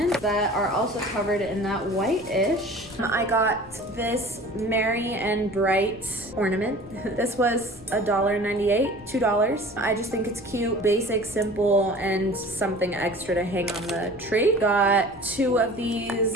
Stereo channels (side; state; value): left; noise; rumble, 24 dB below the sound